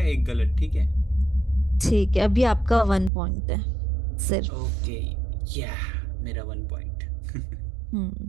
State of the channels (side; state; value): left; drops out; at 3.1 s